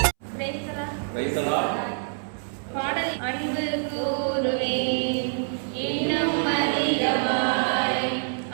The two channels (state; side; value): silent; left; 61 dB below the other